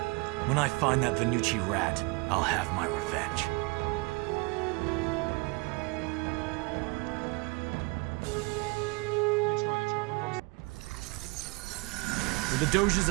When I find that Venucci rat, I'll have my revenge. Нічого, нічого. With the Doge's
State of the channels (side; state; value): left; quieter; 27.5 dB